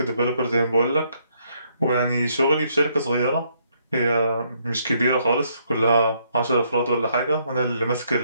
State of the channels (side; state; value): both; inverted; correlation -0.71